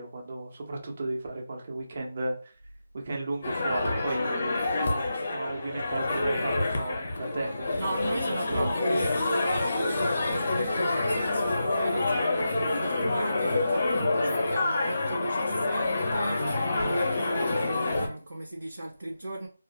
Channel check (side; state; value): both; inverted; correlation -0.88